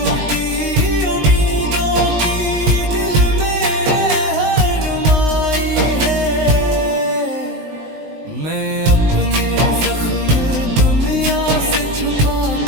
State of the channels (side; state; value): left; late; 19 ms